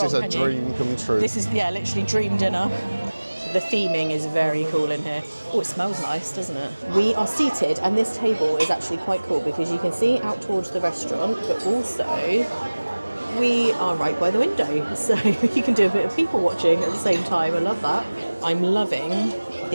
is a can you? dream come true. This is, yeah, literally dream dinner. The theming is very cool in here. Oh, it smells nice, doesn't it? We are seated, and this table is actually quite cool because you can see out towards the restaurant, but also we are right by the window, so you can do a bit of people watching at the same time. I love that. I'm loving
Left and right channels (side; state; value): both; inverted; correlation -1.00